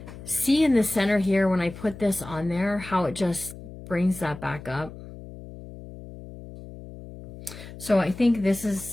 see in the center here when I put this on there, how it just brings that back up. So I think this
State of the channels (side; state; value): left; noise; hum, 15 dB below the sound